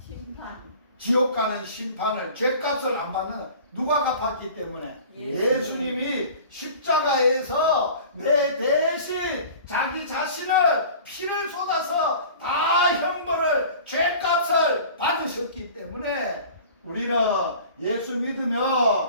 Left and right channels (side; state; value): both; inverted; correlation -0.42